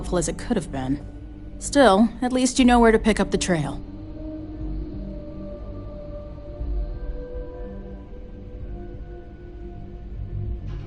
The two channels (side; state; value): both; identical; correlation 1.00